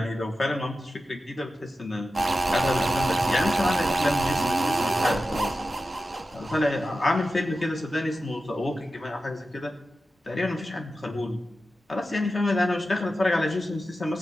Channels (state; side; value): normal; both; correlation 0.92